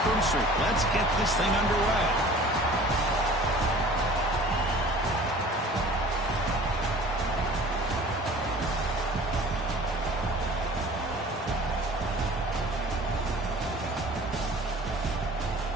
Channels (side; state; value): both; normal; correlation 0.46